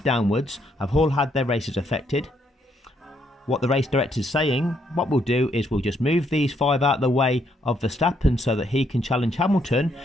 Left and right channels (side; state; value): both; normal; correlation 0.73